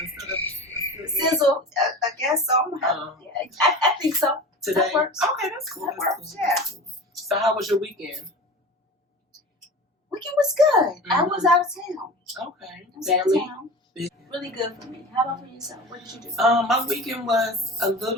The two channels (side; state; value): both; normal; correlation 0.34